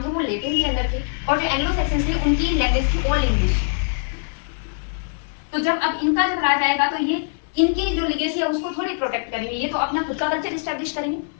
थे वो लेटिन के अंदर थे और जो एंग्लो सैक्सन्स थे उनकी लैंग्वेज थी ओल्ड इंग्लिश। तो जब अब इनका जब राज आएगा तो ये इनकी जो लिगेसी है उसको थोड़ी प्रोटेक्ट करेंगे, ये तो अपना खुद का कल्चर स्टैब्लिश करेंगे।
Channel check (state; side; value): silent; right; 64 dB below the other